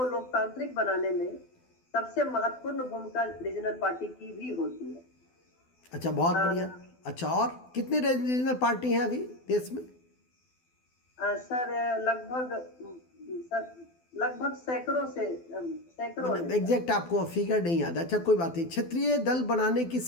लोकतांत्रिक बनाने में सबसे महत्वपूर्ण भूमिका रीजनल पार्टी की भी होती है। अच्छा, बहुत अ, बढ़िया। अच्छा, और कितने रीजनल पार्टी हैं अभी देश में? सर, लगभग सैकड़ों मतलब है सर। एग्जैक्ट आपको फिगर नहीं याद? अच्छा, कोई बात नहीं। क्षेत्रीय दल बनाने की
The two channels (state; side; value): late; right; 12 ms